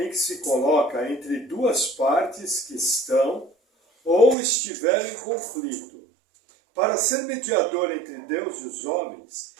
que se coloca entre duas partes que estão ou estiveram em conflito. Para ser mediador entre Deus e os homens,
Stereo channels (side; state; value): left; drops out; at 4.4 s